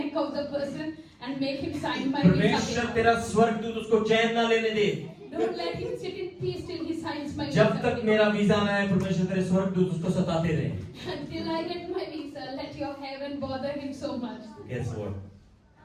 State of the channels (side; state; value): both; identical; correlation 1.00